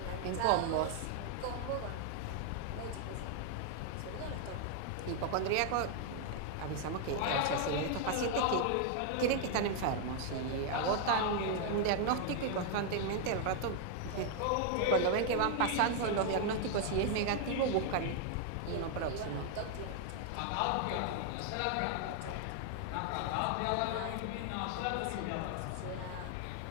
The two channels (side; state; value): both; different; correlation 0.00